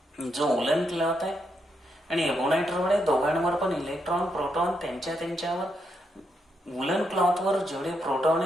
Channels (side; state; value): both; normal; correlation 0.80